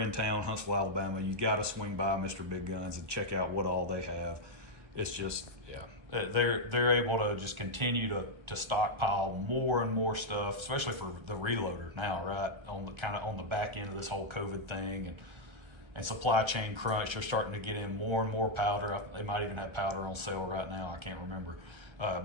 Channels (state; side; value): late; left; 1.3 ms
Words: town, Huntsville, Alabama, you got to swing by Mr. Big Guns and check out what all they have. It's just, yeah, they're able to just continue to stockpile more and more stuff, especially for the reloader now, right? On the back end of this whole COVID thing and supply chain crunch, they're starting to get in more and more powder. They might even have powder on sale right now. I can't remember.